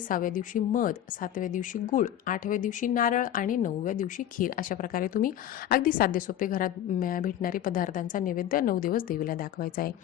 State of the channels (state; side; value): quieter; right; 11.3 dB